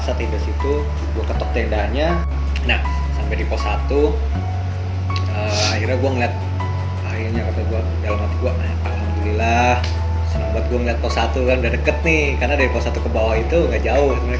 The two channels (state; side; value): identical; both; correlation 1.00